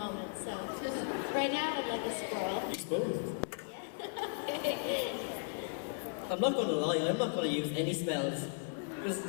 so right now I'd like a squirrel. Use both. I'm not gonna lie, I'm not gonna use any spells. Because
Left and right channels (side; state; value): right; silent; 54 dB below the other